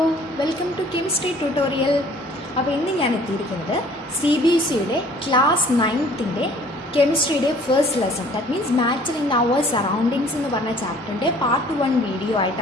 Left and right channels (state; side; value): normal; both; correlation 0.54